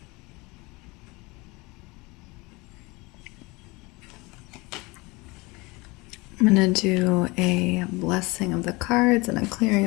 I'm going to do a blessing of the cards and a clearing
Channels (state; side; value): quieter; right; 24.5 dB